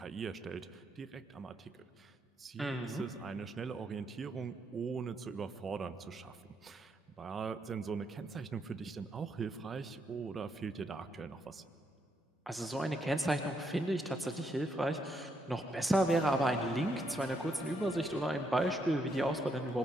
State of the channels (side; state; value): both; normal; correlation 0.77